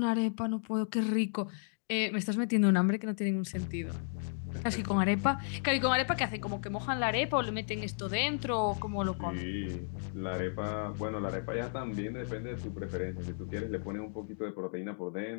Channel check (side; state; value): right; silent; digital silence